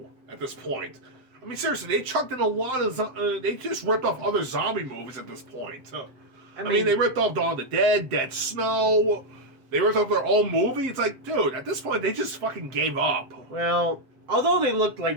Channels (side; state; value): left; late; 7.7 ms